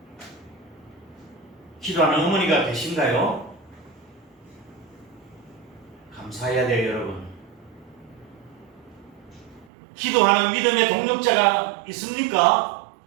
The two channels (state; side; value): drops out; left; at 9.7 s